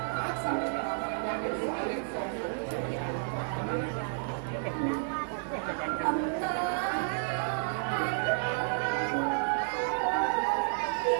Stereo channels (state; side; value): silent; left; 57 dB below the other